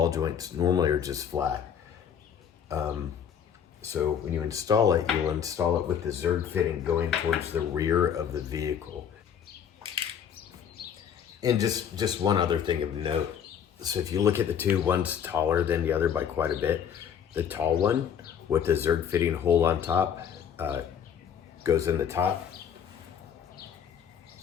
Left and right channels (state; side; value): quieter; right; 8.2 dB